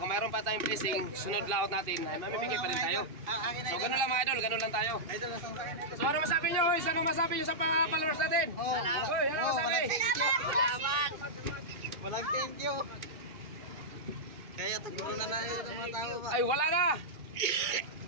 mayroon pa tayong blessing, sunod laot natin ay mamimigay pa rin tayo. So, ganun lang mga idol, ganun lang tayo. Idol, nasaan sa akin, idol? So, ano masabi nyo? Hoy, ano masabi nyo sa followers natin? Hoy, ano masabi? Salamat! Walang thank you. Kaya taguro na yun ang mga tao ba? Ay, wala na!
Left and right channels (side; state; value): left; late; 2.5 ms